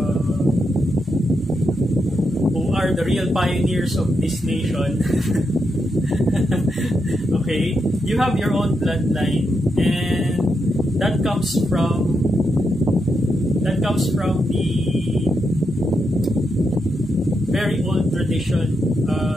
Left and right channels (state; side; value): normal; both; correlation 0.83